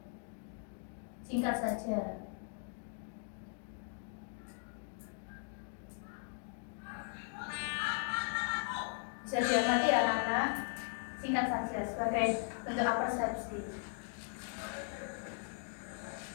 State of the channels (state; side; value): silent; right; 52 dB below the other